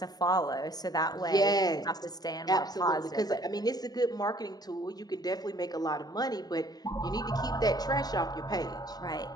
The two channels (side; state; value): right; late; 0.19 ms